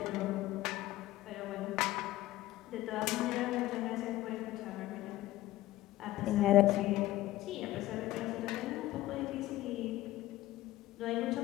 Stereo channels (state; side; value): quieter; right; 15.9 dB